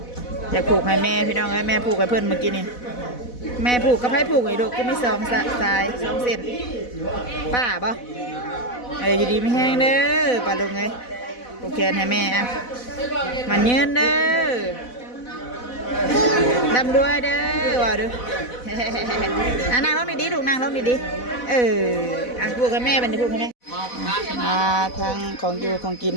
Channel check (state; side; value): late; right; 4.1 ms